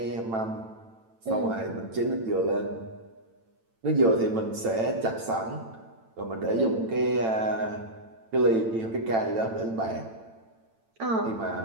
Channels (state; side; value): late; left; 8.9 ms